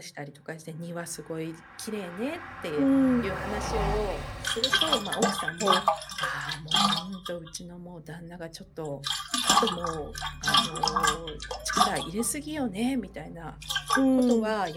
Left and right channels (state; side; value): identical; both; correlation 1.00